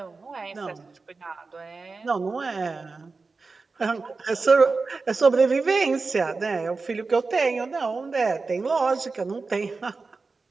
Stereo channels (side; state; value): left; quieter; 4.1 dB